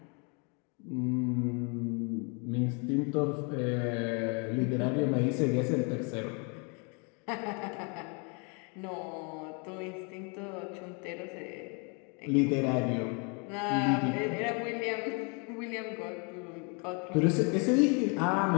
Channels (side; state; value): right; quieter; 34.4 dB